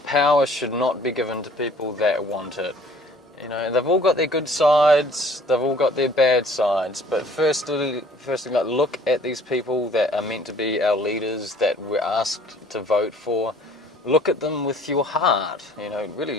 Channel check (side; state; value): both; normal; correlation 0.54